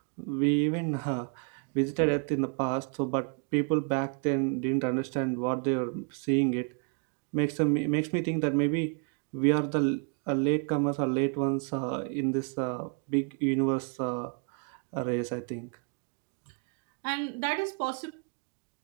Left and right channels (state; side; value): quieter; left; 39.4 dB